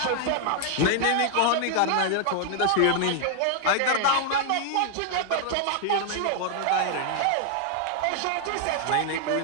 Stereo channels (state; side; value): different; both; correlation 0.00